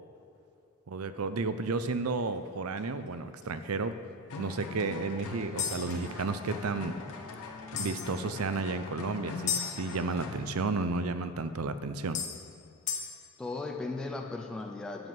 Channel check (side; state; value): both; normal; correlation 0.19